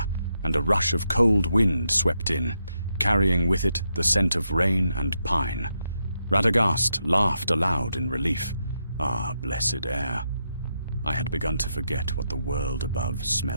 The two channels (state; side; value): inverted; both; correlation -0.83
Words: and a rush of cold wind swept in, carrying with it the scent of rain and pine. Radagast laughed aloud in relief. Ah, blessed air! I had begun to forget what the world above